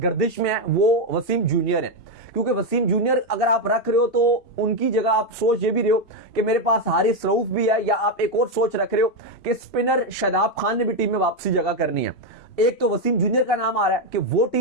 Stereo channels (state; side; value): late; right; 2.7 ms